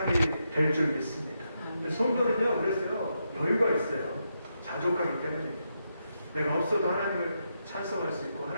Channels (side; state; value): both; inverted; correlation -0.83